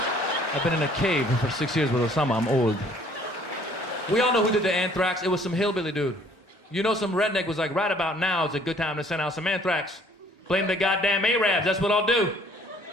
I've been in a cave for 6 years with Osama. I'm old. We all know who did the anthrax. It was some hillbilly dude. You know, some redneck was like, right about now is a good time to send out some anthrax. Blame the goddamn Arabs. That's what I'll do.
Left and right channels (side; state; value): both; normal; correlation 0.58